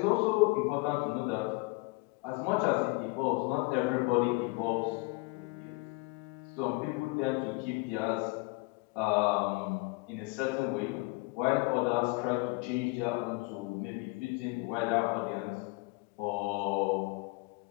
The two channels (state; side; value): quieter; right; 26.3 dB